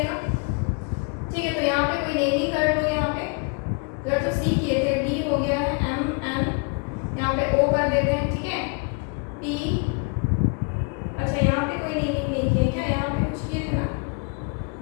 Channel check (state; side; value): quieter; right; 34.6 dB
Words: ठीक है। तो यहाँ पे कोई नेमिंग कर लो, यहाँ पे अगर तो सी किए थे डी हो गया है, एम एन यहाँ पे ओ कर देते हैं, ठीक है, टी, अच्छा यहाँ पे कोई नेमिंग नहीं किया क्या, यहाँ पे कुछ किए थे ना,